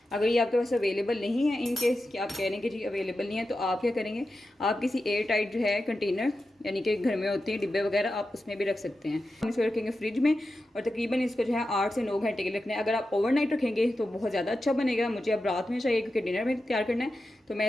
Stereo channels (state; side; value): normal; both; correlation 0.91